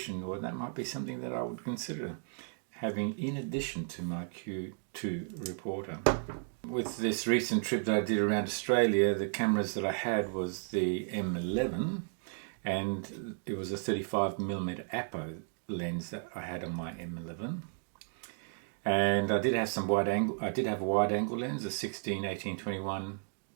well, that might be something that I would consider having in addition to my Q2 reporter. With this recent trip that I did around Australia, the cameras that I had was the M11, and it was a 35mm Apo lens that I had on my M11. And I did have some wide angle. I did have a wide angle lens, a 16-18-21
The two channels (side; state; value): left; silent; 55 dB below the other